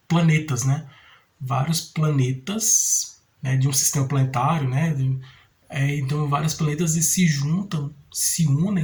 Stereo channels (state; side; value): identical; both; correlation 1.00